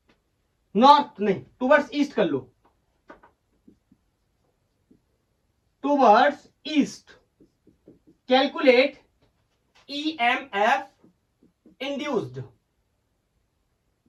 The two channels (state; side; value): identical; both; correlation 1.00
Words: north, नहीं टूवर्ड्स ईस्ट कर लो, towards east, calculate EMF induced.